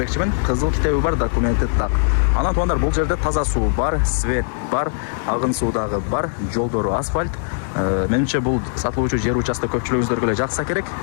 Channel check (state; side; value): silent; right; digital silence